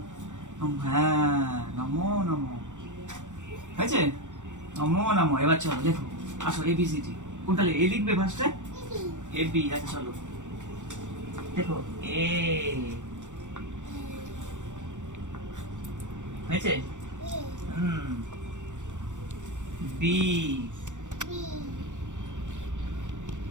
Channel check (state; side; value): late; left; 0.85 ms